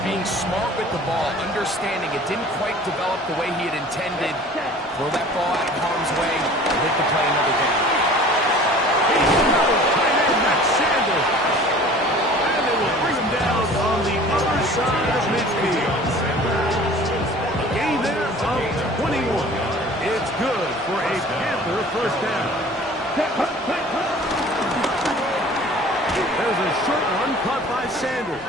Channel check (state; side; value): normal; both; correlation 0.46